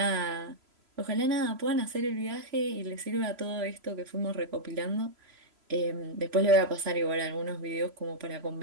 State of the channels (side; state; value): left; late; 3.0 ms